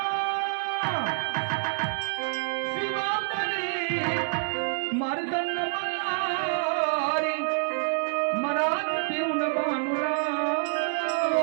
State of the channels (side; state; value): left; silent; 60 dB below the other